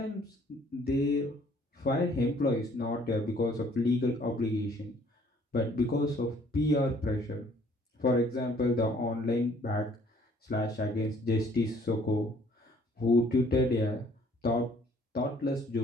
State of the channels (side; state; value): both; normal; correlation 0.60